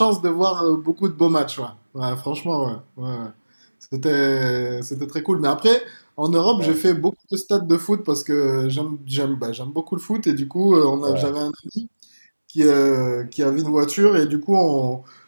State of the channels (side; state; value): both; inverted; correlation -1.00